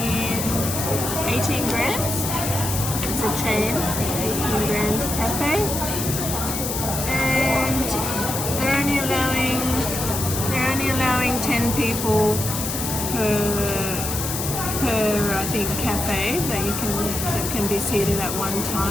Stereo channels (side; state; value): left; noise; hiss, 4 dB below the sound